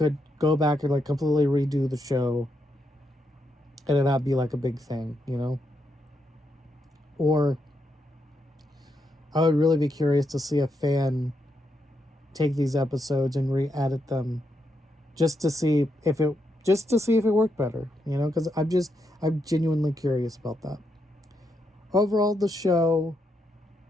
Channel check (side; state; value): both; normal; correlation 0.81